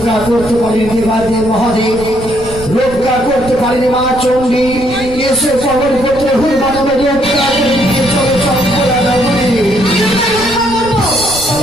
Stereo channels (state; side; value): noise; right; rumble, 13 dB below the sound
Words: করতে পারেন দেবাদেব মহাদেব, রক্ষা করতে পারেন মা চণ্ডী। এসো পবন পুত্র হনুমান আমায় রক্ষা করতে, চলো চম্পলা নগরে।